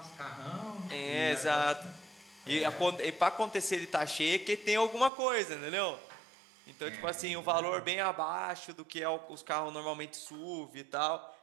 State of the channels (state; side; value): drops out; left; at 5.1 s